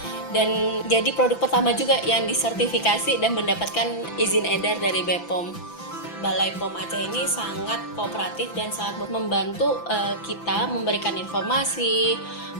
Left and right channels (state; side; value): late; right; 6.0 ms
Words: dan jadi produk pertama juga yang disertifikasi dan mendapatkan izin edar dari BPOM. Balai POM Aceh ini sangat kooperatif dan sangat membantu kita memberikan informasi,